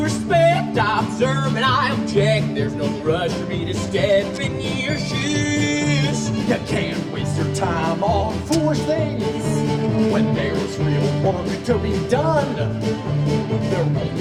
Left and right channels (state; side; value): identical; both; correlation 1.00